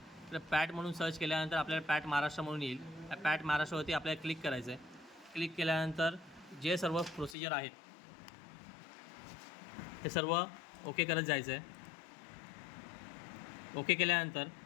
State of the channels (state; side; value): drops out; right; at 7.4 s